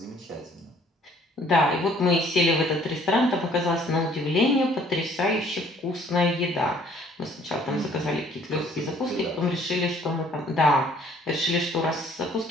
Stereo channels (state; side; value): normal; both; correlation 0.59